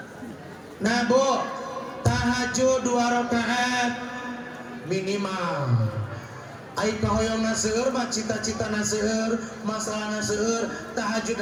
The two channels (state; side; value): identical; both; correlation 1.00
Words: Nah bu tahajud 2 rakaat minimal ai kahoyongna seueur mah cita-citana seueur masalahna seueur